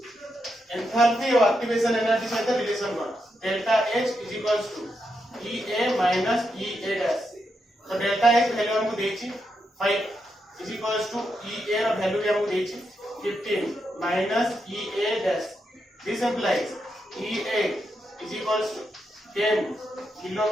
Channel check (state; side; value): normal; both; correlation 0.83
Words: एंथैल्पी और एक्टिवेशन एनर्जी संगे रिलेशन कोन delta H is equals to EA minus EA dash तो डेल्टा H वैल्यू हमको देछि 5 इज इक्वल्स टू EA रो वैल्यू हमको देछि 15 minus EA dash this implies EA is equals to 10 kilo